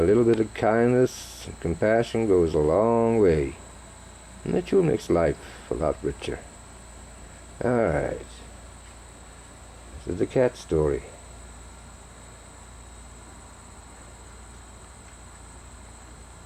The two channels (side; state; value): both; identical; correlation 1.00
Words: little bit of kindness and compassion goes a long way. And that sure makes life a lot richer. Alright. This is the cat story.